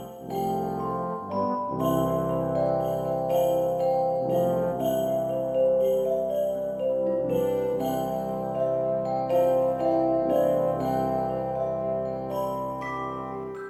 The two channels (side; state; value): both; identical; correlation 1.00